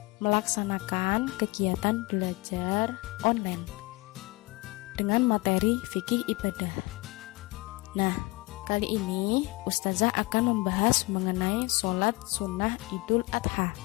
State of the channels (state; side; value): quieter; right; 23.2 dB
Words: melaksanakan kegiatan belajar online dengan materi fikih ibadah. Nah, kali ini Ustazah akan membahas mengenai sholat sunnah Idul Adha.